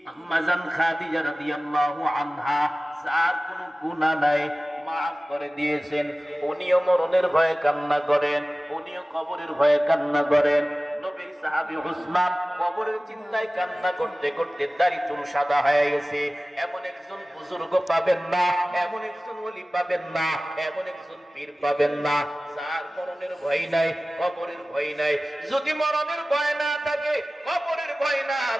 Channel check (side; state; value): both; normal; correlation 0.97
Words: আম্মা জান খাদিজা রাদিয়াল্লাহু আনহা, যার কোনো গুনাহ নাই, মাফ করে দিয়েছেন। উনিও মরণের ভয়ে কান্না করেন, উনিও কবরের ভয়ে কান্না করেন। নবীর সাহাবী উসমান কবরের চিন্তায় কান্না করতে করতে দাড়ি চুল সাদা হয়ে গেছে। এমন একজন বুজুর্গ পাবেন না, এমন একজন ওলি পাবেন না, এমন একজন পীর পাবেন না, যার মরণের ভয় নাই, কবরের ভয় নাই। যদি মরণের ভয় না থাকে, কবরের ভয় না